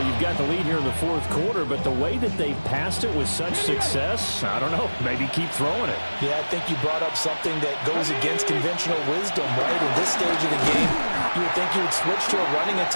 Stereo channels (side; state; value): both; inverted; correlation -1.00